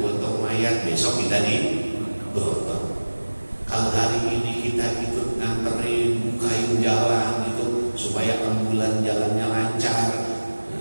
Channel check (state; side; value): inverted; both; correlation -1.00